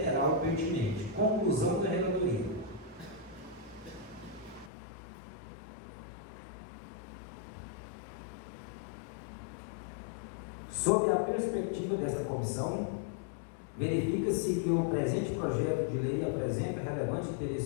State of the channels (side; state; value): right; drops out; at 4.7 s